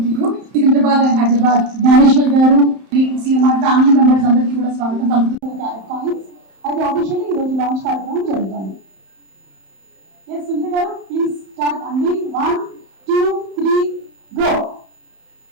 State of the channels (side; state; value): left; late; 31 ms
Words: to you. Secunderabad and Hyderabad Gnaneshwar garu CMR family members అందరికీ కూడా స్వాగతం పలుకుతూ క్యారెట్ కాయిన్స్ అయితే ఆఫీషియల్లీ ఈ రోజు లాంచ్ కార్యక్రమం జరుగుతుంది. ఎస్ సునీత గారు ప్లీజ్ స్టార్ట్ అండి. 1 2 3 గో.